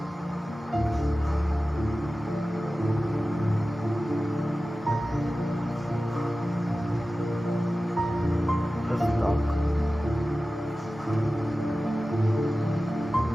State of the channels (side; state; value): both; normal; correlation 0.95